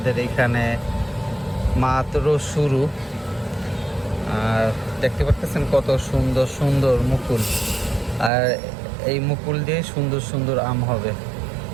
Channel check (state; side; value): drops out; left; at 8.3 s